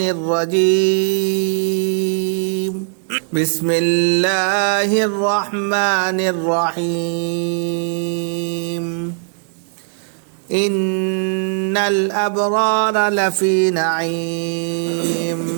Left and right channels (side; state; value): left; silent; 56 dB below the other